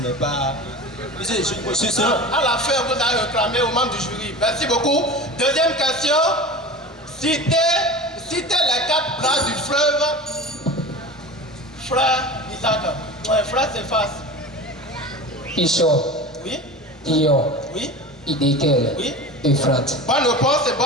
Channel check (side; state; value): both; normal; correlation 0.33